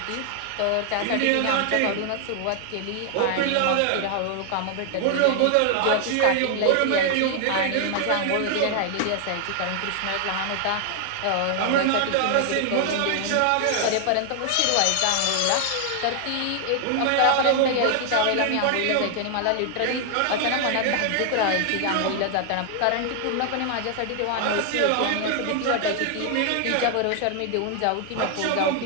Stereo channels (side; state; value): both; different; correlation 0.00